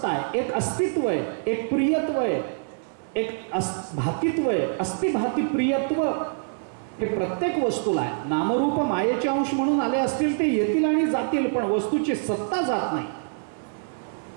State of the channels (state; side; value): silent; left; 61 dB below the other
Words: आहे, एक अस्तित्व आहे, एक प्रियत्व आहे, एक भातित्व आहे. अस्तिभाती प्रियत्व हे प्रत्येक वस्तूला आहे. नामरूप मायेचे अंश म्हणून आले असतील ते येतील आणि जातील, पण वस्तूची सत्ता जात नाही.